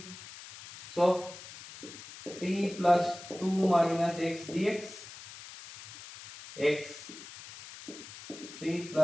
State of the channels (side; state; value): left; noise; hiss, 15 dB below the sound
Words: so 3 plus 2 minus x dx, x 3